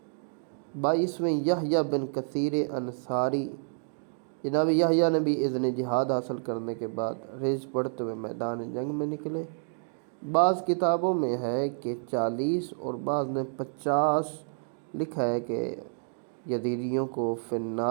22ویں یحییٰ بن کثیر انصاری، جناب یحییٰ نے بھی اذن جہاد حاصل کرنے کے بعد رجز پڑھتے ہوئے میدان جنگ میں نکلے۔ بعض کتابوں میں ہے کہ 40 اور بعض نے 50 لکھا ہے کہ یزیدیوں کو فی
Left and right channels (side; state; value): left; silent; digital silence